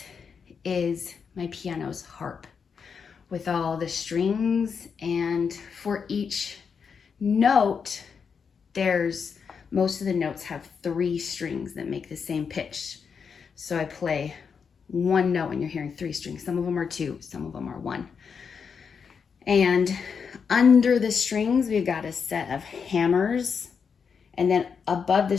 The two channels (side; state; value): right; quieter; 6.2 dB